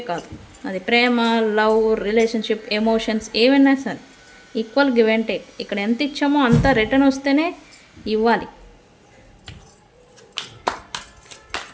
కాదు అది. ప్రేమ, లవ్, రిలేషన్షిప్, ఎమోషన్స్ ఏమైనా సరే ఈక్వల్ గివ్ అండ్ టేక్. ఇక్కడ ఎంత ఇచ్చామో అంత రిటర్న్ వస్తేనే ఇవ్వాలి.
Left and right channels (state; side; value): identical; both; correlation 1.00